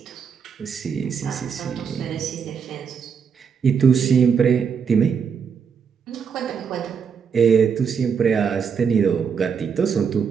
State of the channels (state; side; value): quieter; left; 6.5 dB